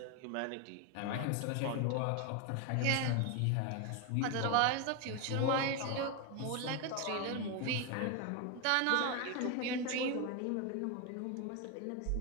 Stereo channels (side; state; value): both; different; correlation 0.01